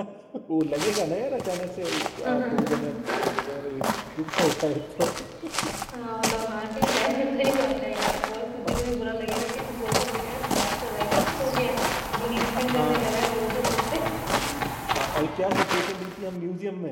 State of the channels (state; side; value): identical; both; correlation 1.00